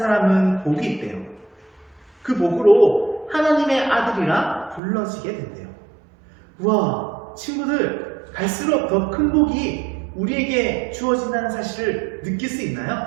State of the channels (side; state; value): left; drops out; at 4.8 s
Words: 복이 있대요. 그 복으로 하나님의 아들이라 불러지게 된대요. 우와, 친구들, 갈수록 더 큰 복이 우리에게 주어진다는 사실을 느낄 수